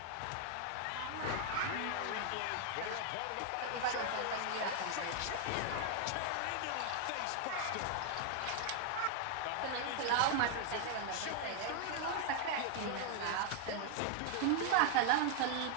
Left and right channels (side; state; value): both; different; correlation 0.00